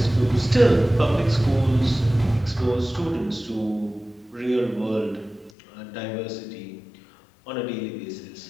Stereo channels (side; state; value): right; drops out; at 5.5 s